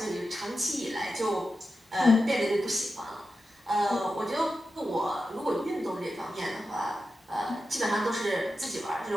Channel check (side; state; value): both; normal; correlation 0.90